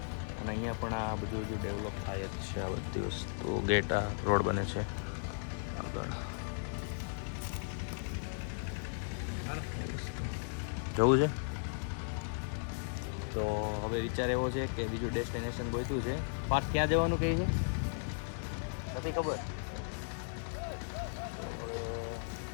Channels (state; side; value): silent; right; digital silence